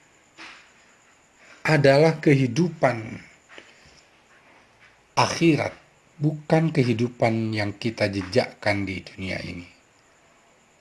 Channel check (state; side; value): identical; both; correlation 1.00